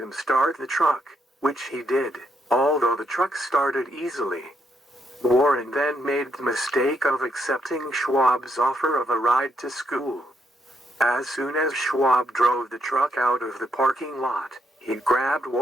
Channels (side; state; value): both; normal; correlation 0.77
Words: start the truck, which he did, although the truck started easily. Warren then made the mistake of accepting Schwab's offer of a ride to school. As soon as Schwab drove the truck out of the parking lot, he grabbed